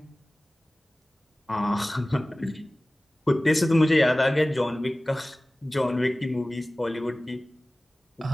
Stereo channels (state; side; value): normal; both; correlation 0.98